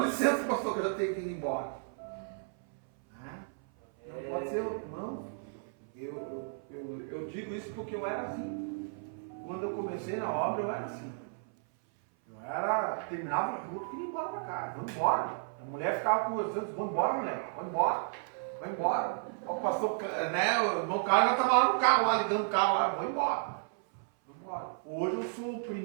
licença, pastor, que eu tenho que ir embora. Né? Não pode ser, irmão. Eu digo isso porque eu era assim. Quando eu comecei na obra, eu era assim. Terminava o culto e ia embora para casa. Vamos embora. A mulher ficava conversando, vamos embora, mulher. Vai embora. Vai embora. O pastor, né? O irmão Carlos estava lá no carro, lá ligando o carro lá. Vou embora. Hoje eu sou o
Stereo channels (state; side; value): silent; left; 56 dB below the other